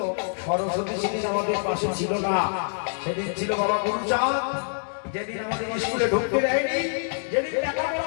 সরস্বতী সেদিন আমাদের পাশে ছিল না, সেদিন ছিল বাবা গুরুচাঁদ, যেদিন আমাদের স্কুলে ঢুকতে দেয়নি, যেদিন লেখাপড়া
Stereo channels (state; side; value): silent; right; digital silence